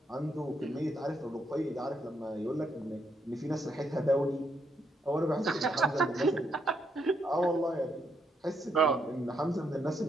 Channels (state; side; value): normal; both; correlation 0.77